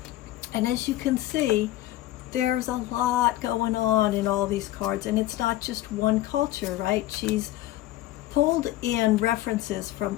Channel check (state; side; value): quieter; right; 15.5 dB